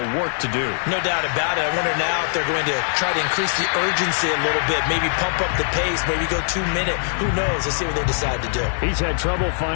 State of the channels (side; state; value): right; silent; digital silence